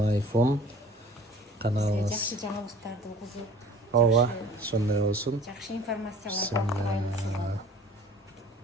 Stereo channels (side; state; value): both; normal; correlation 0.48